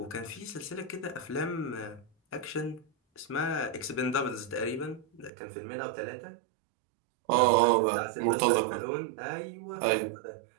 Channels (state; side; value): drops out; left; at 5.3 s